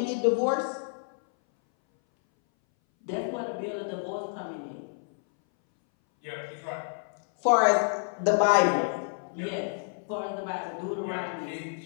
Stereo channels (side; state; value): right; silent; 59 dB below the other